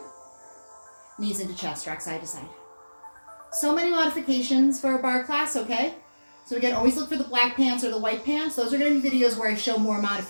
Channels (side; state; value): both; inverted; correlation -1.00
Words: Knees into chest, rock side to side. So many modifications for a bar class, okay? So again, always look for the black pants or the white pants. Those are going to be videos where I show more